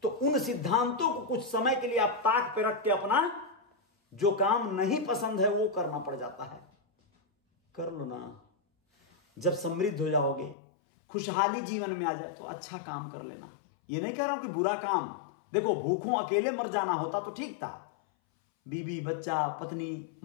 तो उन सिद्धांतों को कुछ समय के लिए आप ताक पे रख के अपना जो काम नहीं पसंद है वो करना पड़ जाता है। कर लो ना। जब समृद्ध हो जाओगे, खुशहाली जीवन में आ जाए, तो अच्छा काम कर लेना। ये नहीं कह रहा हूं कि बुरा काम, देखो भूखों अकेले मर जाना होता तो ठीक था। बीवी, बच्चा, पत्नी,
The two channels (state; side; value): drops out; right; at 10.6 s